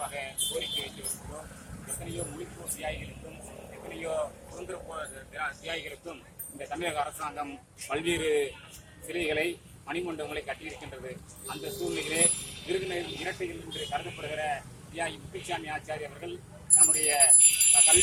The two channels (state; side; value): identical; both; correlation 1.00